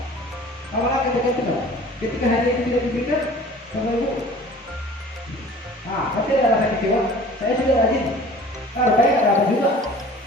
Awalnya ketergantungan. Ketika hadiah itu tidak diberikan, Bapak Ibu, pasti ada rasa kecewa. Saya sudah rajin, rupanya nggak dapat juga.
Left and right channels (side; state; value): both; normal; correlation 0.46